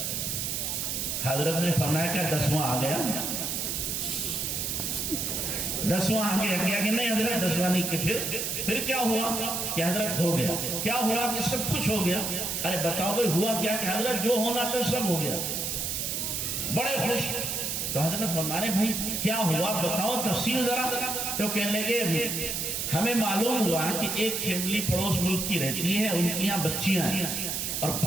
حضرت نے فرمایا کہ 10واں آ گیا، 10واں آ گیا. کیا کہ نہیں حضرت 10واں نہیں. کہ پھر کیا ہوا کہ حضرت ہو گیا. کیا ہوا کہ سب کچھ ہو گیا. ارے بتاؤ بھائی ہوا کیا کہ حضرت جو ہونا تھا سب ہو گیا. بڑے خوش. تو حضرت فرمانے بھائی کیا ہوا بتاؤ تفصیل ذرا. تو کہنے لگے ہمیں معلوم ہوا کہ ایک فیملی پڑوس ملک کی رہتی ہے، ان کی یہاں بچیاں ہیں اور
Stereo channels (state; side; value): noise; right; hiss, 1 dB below the sound